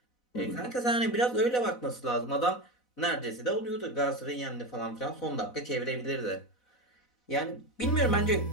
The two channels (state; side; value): late; right; 4.1 ms